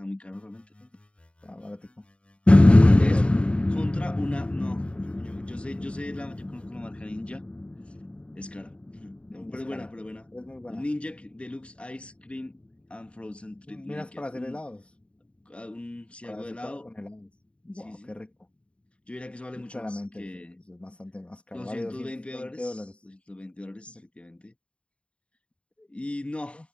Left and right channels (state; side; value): late; right; 0.059 ms